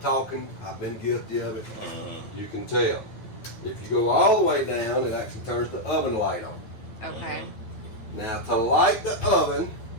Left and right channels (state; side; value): late; right; 9.2 ms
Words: I've been guilty of it, you can tell. If you go all the way down, it actually turns the oven light on. Okay. Now to light the oven